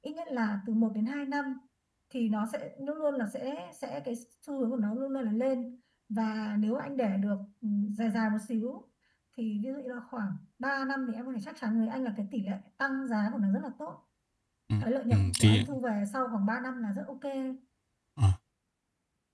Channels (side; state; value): both; identical; correlation 1.00